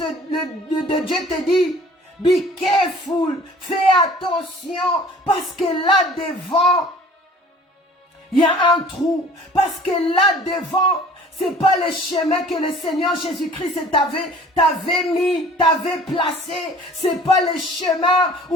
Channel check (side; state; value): both; normal; correlation 0.49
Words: Dieu te dit, be careful, fais attention, parce que là devant, il y a un trou, parce que là devant, c'est pas le chemin que le Seigneur Jésus-Christ t'avait placé. C'est pas le chemin